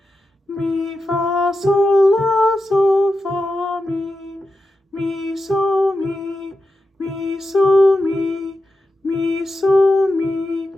mi, fa, sol, la, sol, fa, mi, sol, mi, sol, mi, sol,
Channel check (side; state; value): both; normal; correlation 0.90